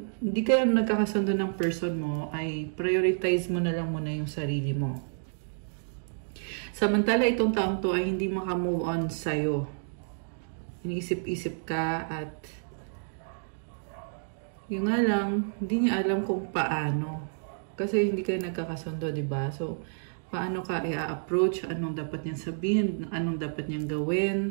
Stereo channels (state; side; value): silent; left; digital silence